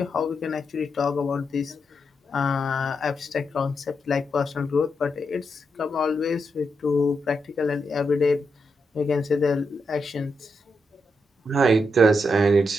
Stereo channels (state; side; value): normal; both; correlation 0.83